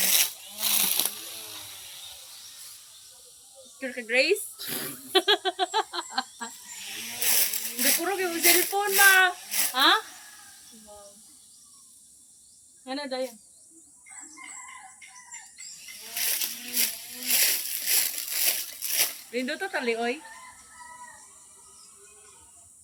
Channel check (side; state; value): both; identical; correlation 1.00